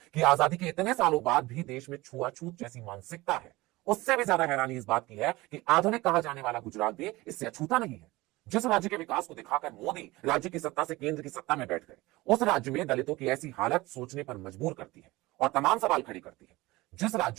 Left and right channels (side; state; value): left; quieter; 20.2 dB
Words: कि आजादी के इतने सालों बाद भी देश में छुआछूत जैसी मानसिकता है। उससे भी ज्यादा हैरानी इस बात की है कि आधुनिक कहा जाने वाला गुजरात भी इससे अछूता नहीं है। जिस राज्य के विकास को दिखाकर मोदी राज्य की सत्ता से केंद्र की सत्ता में बैठ गए, उस राज्य में दलितों की ऐसी हालत सोचने पर मजबूर करती है और तमाम सवाल खड़ी करती है। जिस